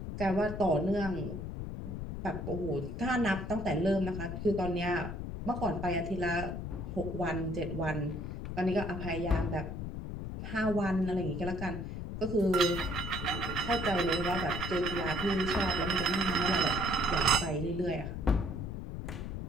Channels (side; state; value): left; noise; rumble, 6 dB below the sound